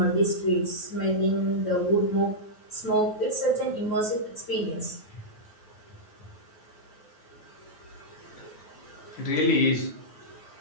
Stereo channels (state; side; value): late; right; 9.4 ms